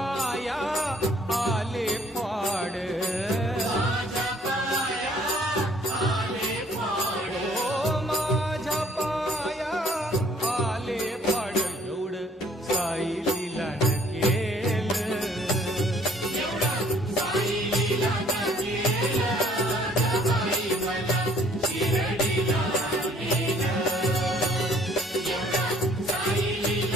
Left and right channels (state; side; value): normal; both; correlation 0.59